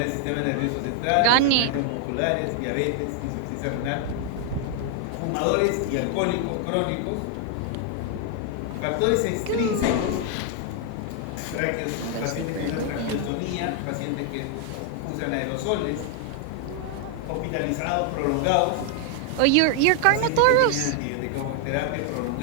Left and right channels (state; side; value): different; both; correlation 0.00